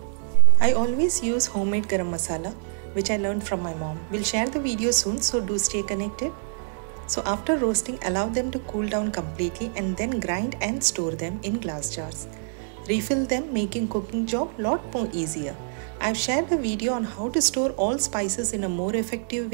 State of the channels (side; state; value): left; silent; digital silence